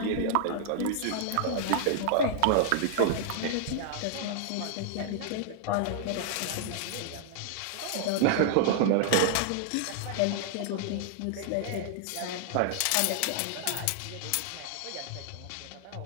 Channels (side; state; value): both; different; correlation -0.01